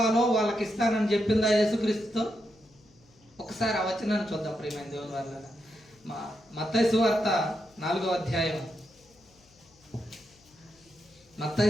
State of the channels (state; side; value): noise; left; hum, 30 dB below the sound